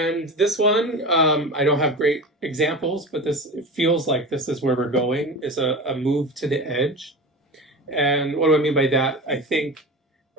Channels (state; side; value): normal; both; correlation 0.29